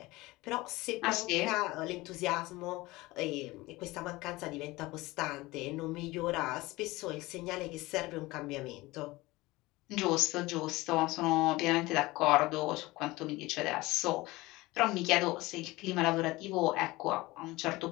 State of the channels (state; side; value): quieter; right; 20.5 dB